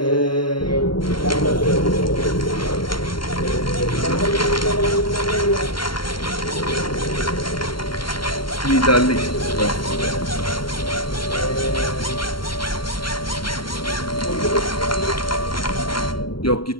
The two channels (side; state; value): right; late; 0.73 ms